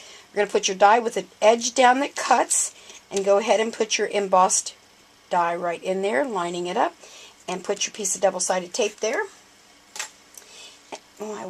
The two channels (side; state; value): both; identical; correlation 1.00